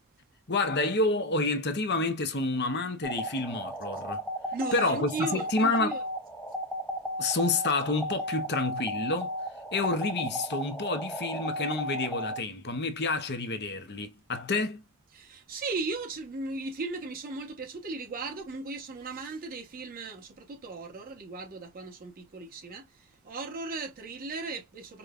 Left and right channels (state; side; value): normal; both; correlation 0.11